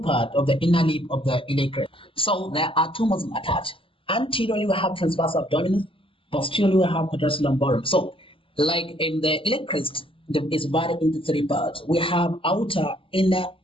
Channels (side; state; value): right; late; 0.26 ms